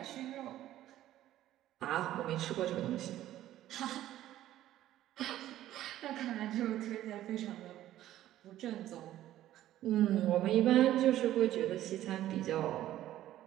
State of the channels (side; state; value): left; quieter; 13.4 dB